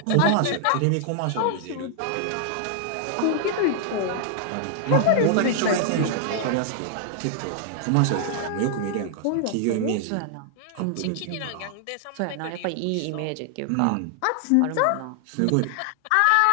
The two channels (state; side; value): different; both; correlation 0.00